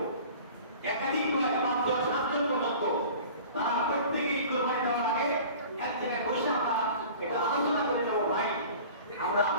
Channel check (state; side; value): inverted; both; correlation -0.42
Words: একাধিক নয় ৫ জন ৭ জন পর্যন্ত, তারা প্রত্যেকেই কুরবানি দেওয়ার আগে এক জায়গায় বসে আমরা এটা আলোচনা করে নেবো, ভাই আমরা